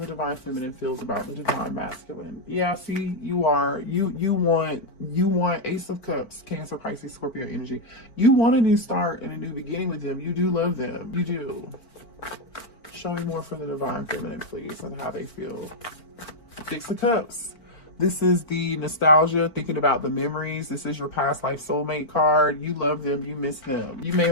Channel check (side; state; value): right; late; 4.5 ms